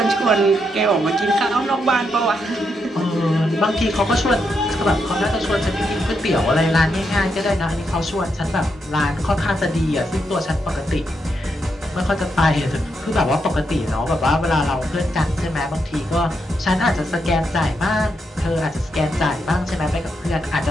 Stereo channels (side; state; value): both; normal; correlation 0.81